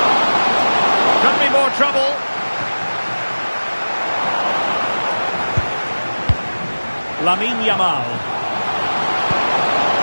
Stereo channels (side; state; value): both; inverted; correlation -1.00